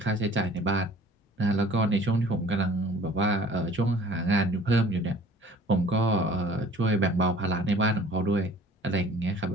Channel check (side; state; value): both; normal; correlation 0.50